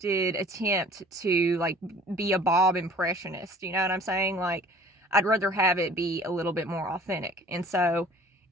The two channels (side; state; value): both; normal; correlation 0.49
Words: attempt to like be a Bob impressionist. You know what I'm saying? Like, I'd rather have it be a little bit more authentic. And so